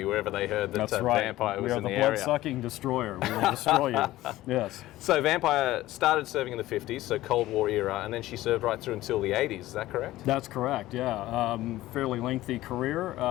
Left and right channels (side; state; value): right; quieter; 16.2 dB